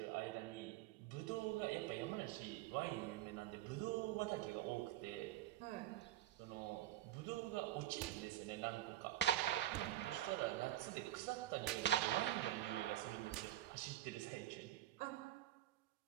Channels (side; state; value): left; quieter; 13.8 dB